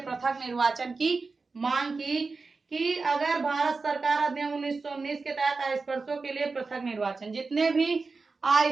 पृथक निर्वाचन की मांग की कि अगर भारत सरकार अधिनियम 1919 के तहत अस्पृश्यों के लिए पृथक निर्वाचन, जितने भी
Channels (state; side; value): quieter; left; 4.1 dB